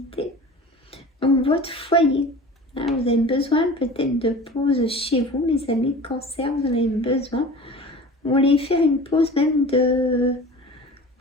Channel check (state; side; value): normal; both; correlation 0.39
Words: Donc votre foyer, hein, vous avez besoin peut-être de pause chez vous, mes amis cancer, vous en avez besoin. Vous voulez faire une pause même de